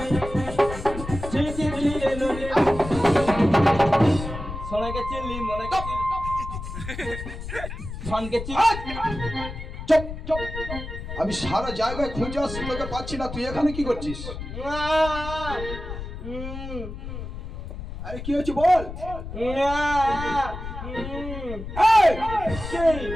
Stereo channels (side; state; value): left; noise; rumble, 8 dB below the sound